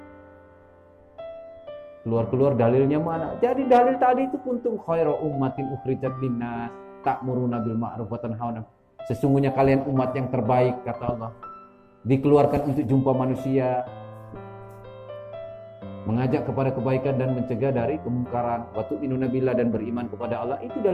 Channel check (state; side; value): identical; both; correlation 1.00